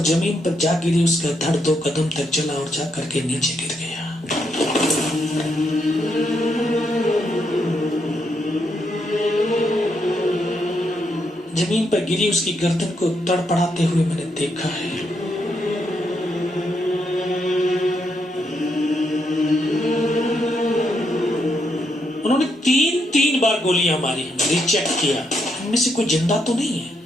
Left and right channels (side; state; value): both; normal; correlation 0.78